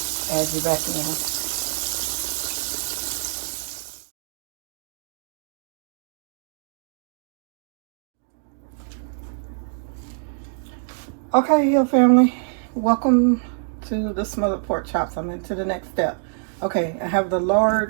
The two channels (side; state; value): left; silent; digital silence